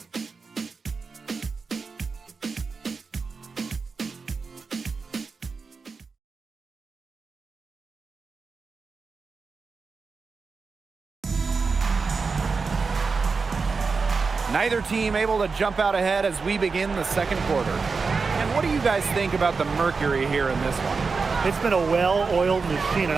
Neither team able to jump out ahead as we begin the second quarter. And what do you guys think about the Mercury here in this one? It's been a well-oiled machine on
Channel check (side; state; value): left; quieter; 4.7 dB